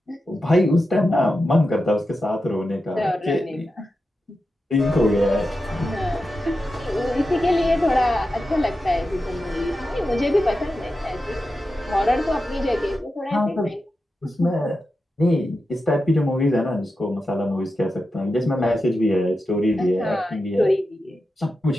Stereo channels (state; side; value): normal; both; correlation 0.90